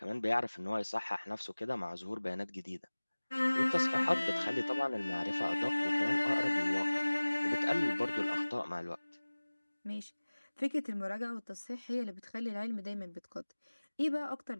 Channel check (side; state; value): both; inverted; correlation -1.00